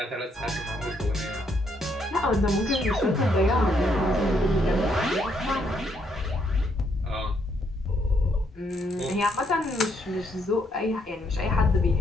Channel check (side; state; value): both; normal; correlation 0.73